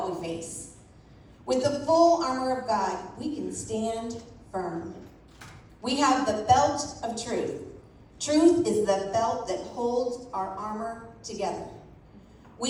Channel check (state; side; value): identical; both; correlation 1.00